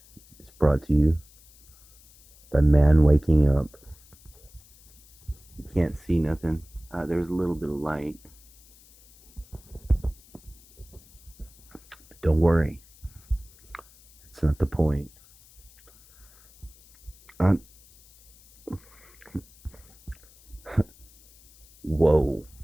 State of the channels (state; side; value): noise; left; hiss, 26 dB below the sound